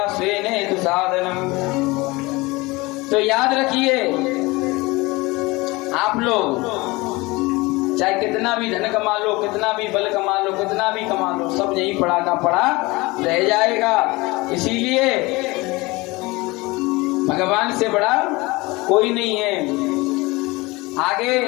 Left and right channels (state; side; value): quieter; right; 22.9 dB